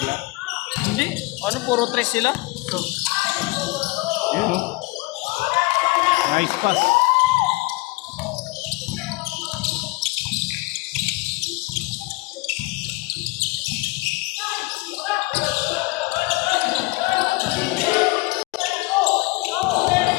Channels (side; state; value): right; quieter; 22.9 dB